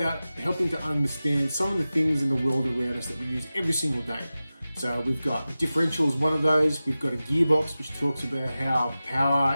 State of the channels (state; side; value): inverted; both; correlation -0.95